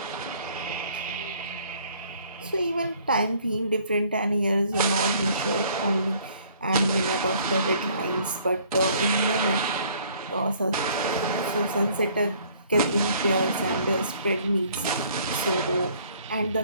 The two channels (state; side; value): inverted; both; correlation -0.59